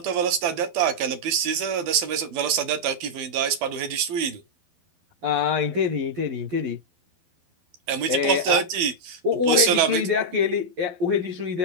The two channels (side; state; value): left; late; 12 ms